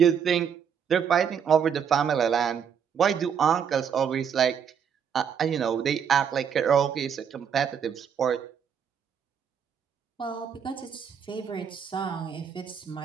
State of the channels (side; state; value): left; quieter; 7.5 dB